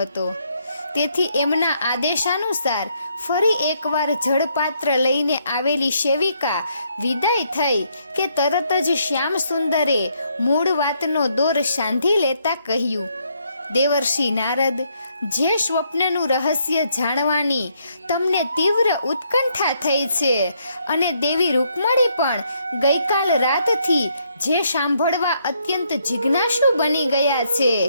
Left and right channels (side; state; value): both; inverted; correlation -0.73